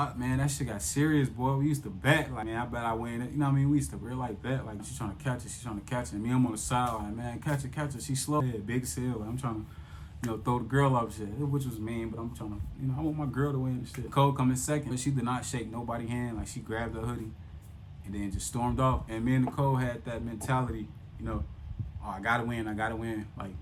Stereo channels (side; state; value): both; identical; correlation 1.00